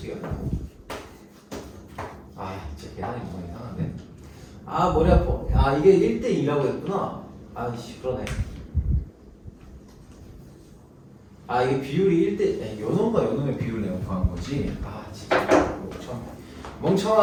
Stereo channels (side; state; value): both; identical; correlation 1.00